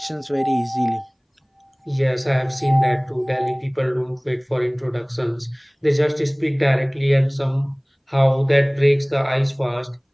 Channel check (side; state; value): both; identical; correlation 1.00